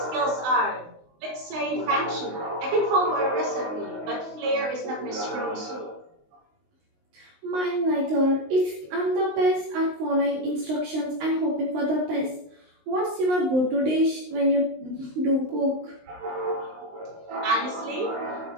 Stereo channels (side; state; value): left; late; 19 ms